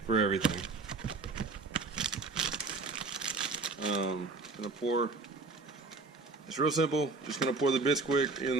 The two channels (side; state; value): left; quieter; 3.8 dB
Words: for everything. Gonna pour. It's real simple. Just gonna pour the Bisquick